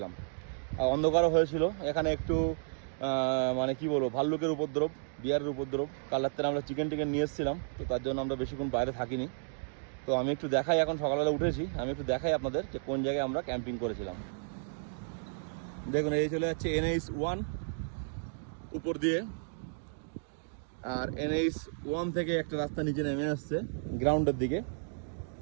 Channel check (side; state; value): left; silent; digital silence